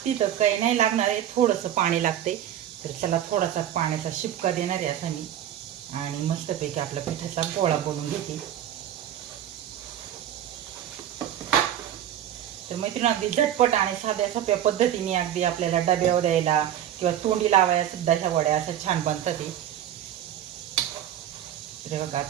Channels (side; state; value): left; quieter; 10.9 dB